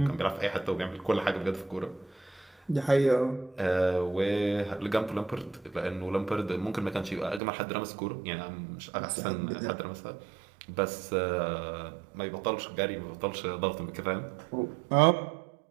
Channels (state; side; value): drops out; left; at 7.4 s